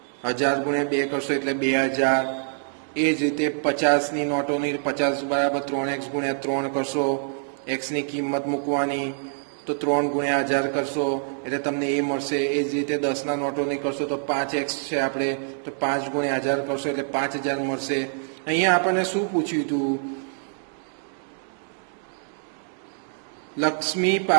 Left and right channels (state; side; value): silent; left; digital silence